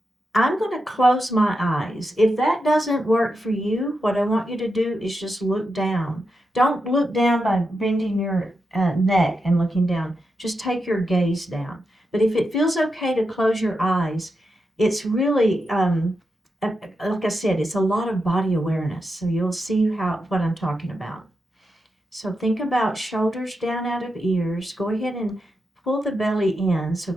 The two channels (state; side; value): normal; both; correlation 0.87